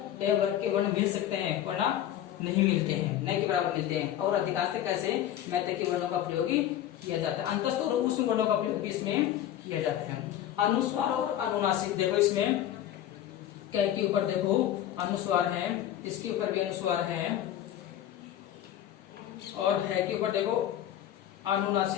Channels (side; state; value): right; quieter; 11.8 dB